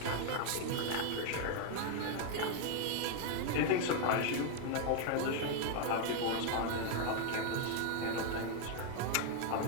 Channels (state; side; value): different; both; correlation 0.00